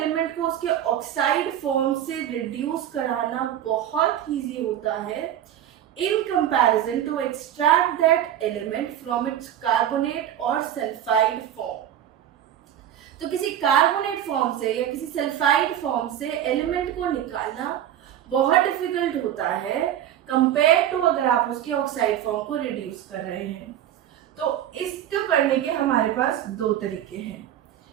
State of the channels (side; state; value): left; quieter; 11.0 dB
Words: को उसके ऑक्साइड फॉर्म से रिड्यूस कराना बहुत इजी होता है in comparison to extract that element from its carbonate और सल्फाइड फॉर्म। तो किसी कार्बोनेट फॉर्म से या किसी सल्फाइड फॉर्म से एलिमेंट को निकालना बहुत डिफिकल्ट होता है कंपेयर टू अगर आप उसके ऑक्साइड फॉर्म को रिड्यूस कर रहे हैं। तो इसको करने के हमारे पास दो तरीके हैं।